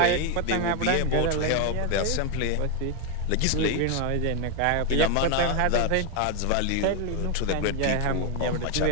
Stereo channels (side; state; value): both; different; correlation 0.01